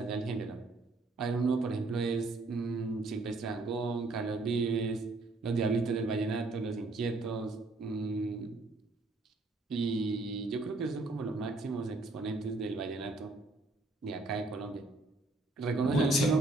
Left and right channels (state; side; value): quieter; left; 3.2 dB